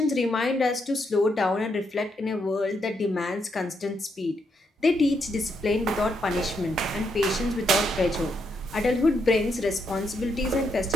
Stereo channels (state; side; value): normal; both; correlation 0.78